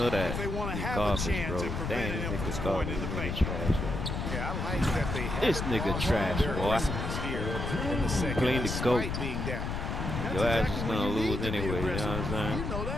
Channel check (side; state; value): left; noise; rumble, 3 dB below the sound